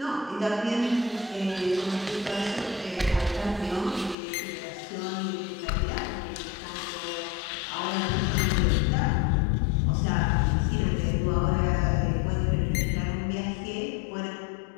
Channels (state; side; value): drops out; right; at 4.2 s